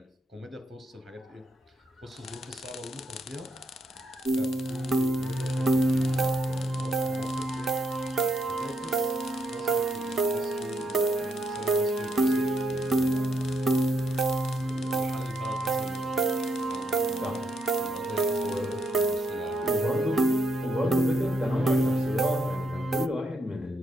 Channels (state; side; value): normal; both; correlation 0.77